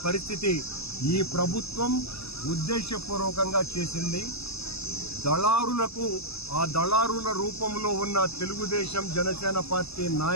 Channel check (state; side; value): late; right; 0.78 ms